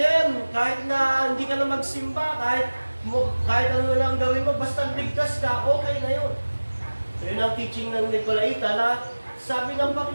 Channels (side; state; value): both; inverted; correlation -1.00